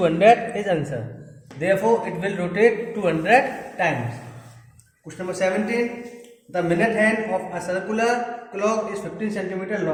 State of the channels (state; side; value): identical; both; correlation 1.00